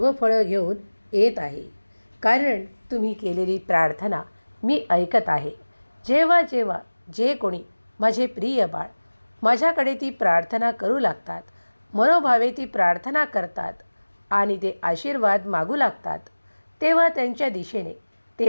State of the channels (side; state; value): both; inverted; correlation -1.00